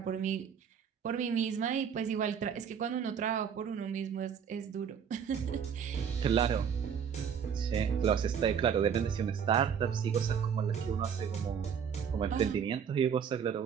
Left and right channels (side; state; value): left; quieter; 7.4 dB